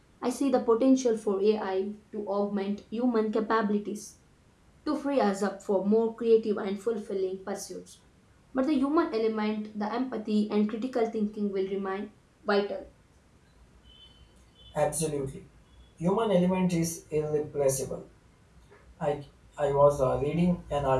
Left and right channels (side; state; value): both; identical; correlation 1.00